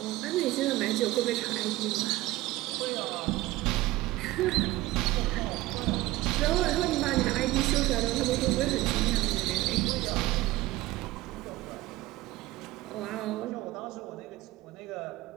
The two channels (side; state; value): left; quieter; 17.9 dB